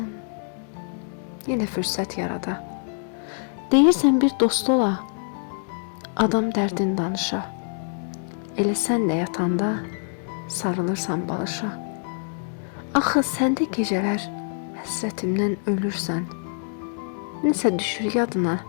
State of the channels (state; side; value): silent; right; 62 dB below the other